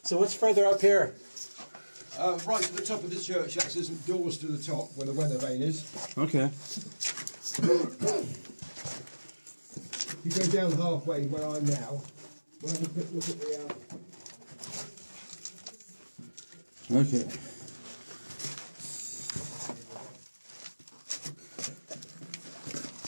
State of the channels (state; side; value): inverted; both; correlation -1.00